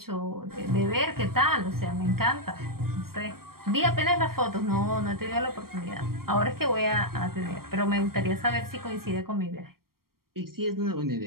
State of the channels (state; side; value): late; left; 0.93 ms